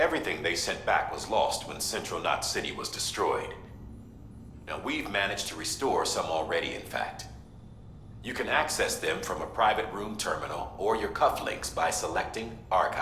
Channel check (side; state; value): both; identical; correlation 1.00